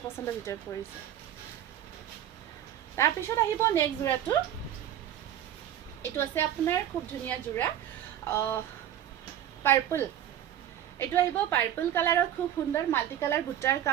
পচন্দৰ ভিতৰত পৰিছে তাৰপিছত আহিব নেক্সট যোৰাটো এইটো আছে আপোনাৰ খুব ধুনীয়া যোৰা পাৰ্পল এইটো আহিব পাৰ্পল কালাৰত খুব সুন্দৰ মাল্টি কালাৰ বুটাৰ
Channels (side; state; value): left; quieter; 10.8 dB